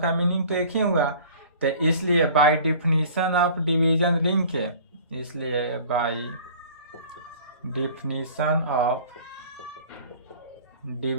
मीनिंग तो एक ही हुआ। तो इसलिए by definition of division ring के, इसलिए by definition of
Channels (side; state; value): both; inverted; correlation -0.46